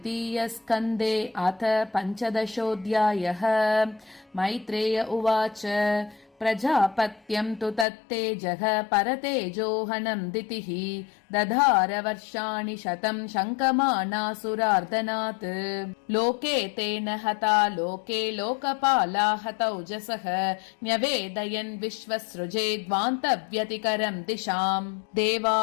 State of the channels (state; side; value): drops out; right; at 7.9 s